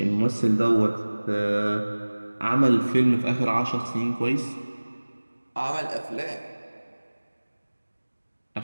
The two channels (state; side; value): inverted; both; correlation -1.00